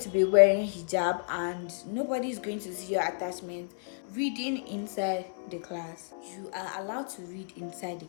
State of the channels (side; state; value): right; silent; digital silence